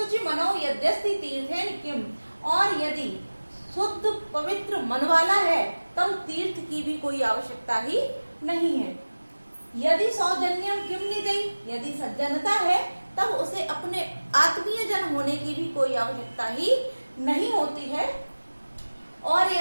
मनो यद्यस्ति तीर्थेन किम, और यदि शुद्ध पवित्र मन वाला है तब तीर्थ की भी कोई आवश्यकता ही नहीं है। यदि सौजन्यम किम निजई, यदि सज्जनता है तब उसे अपने आत्मीय जन होने की भी कोई आवश्यकता ही नहीं होती है। और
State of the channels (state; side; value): inverted; both; correlation -1.00